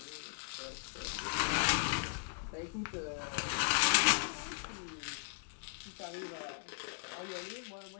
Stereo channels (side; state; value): right; silent; digital silence